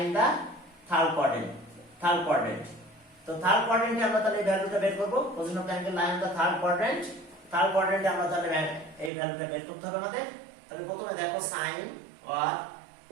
in the third quadrant তো থার্ড কোয়াড্রেন্টে আমরা তাহলে এই ভ্যালুটা বের করব position of angle lie in the third কোয়াড্রেন্টে আমরা তাহলে এই ভ্যালুটা বের করতে হবে আমাদের তাহলে প্রথমে দেখো sign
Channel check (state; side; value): drops out; left; at 9.1 s